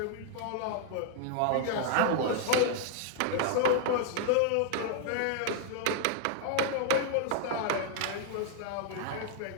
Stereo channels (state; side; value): different; both; correlation 0.00